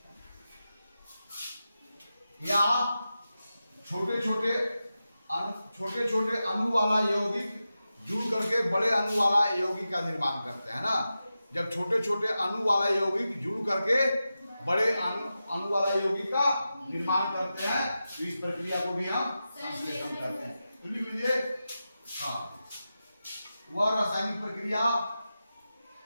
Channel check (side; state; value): both; inverted; correlation -0.92